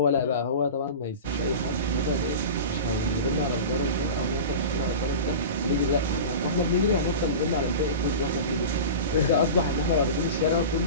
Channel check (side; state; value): both; inverted; correlation -0.30